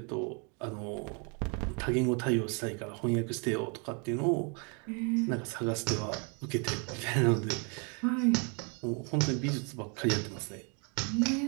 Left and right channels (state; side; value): quieter; left; 35.4 dB